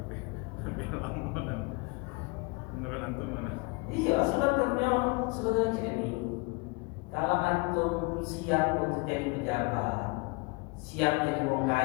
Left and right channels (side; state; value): right; quieter; 28.2 dB